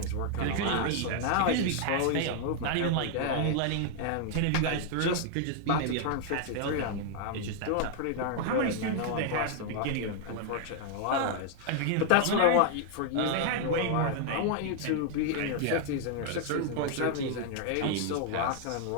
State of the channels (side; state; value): both; different; correlation 0.00